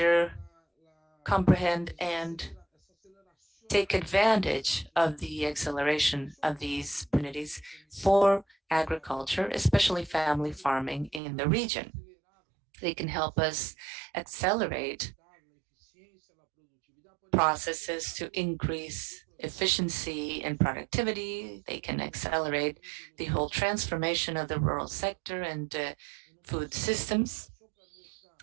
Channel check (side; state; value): left; drops out; at 11.2 s